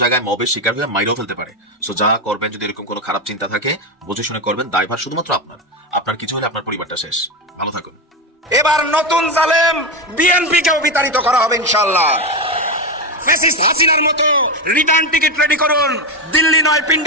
জায়গায় মবের শিকার হয়ে মাইরেও ফেলতে পারে। সো যা করবেন, যদি এরকম কোনো খারাপ চিন্তা থাকে বুঝে শুনে করবেন। দায়ভার শুধুমাত্র আপনার কিছু হলে আপনার পরিবারটা শেষ। ভালো থাকুন। এবার নতুন জালেম বিএনপিকেও বিতাড়িত করা হবে ইনশাআল্লাহ। ফ্যাসিস্ট হাসিনার মতো রিটার্ন টিকিট রেডি করুন। দিল্লি নয়,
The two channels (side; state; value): both; normal; correlation 0.13